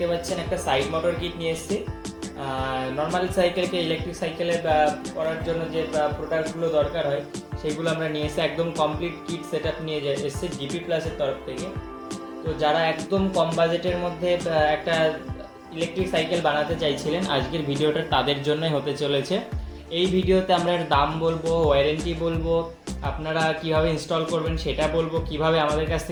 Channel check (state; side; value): identical; both; correlation 1.00